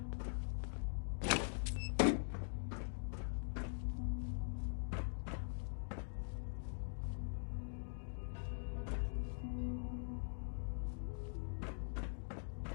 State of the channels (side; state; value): right; silent; digital silence